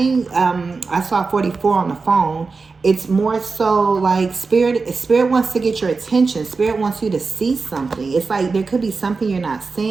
I saw 44 on the phone. It's more so like spirit wants to get your attention. Spirit wants you to see something. It's like there could be something you're not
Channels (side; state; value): left; quieter; 4.4 dB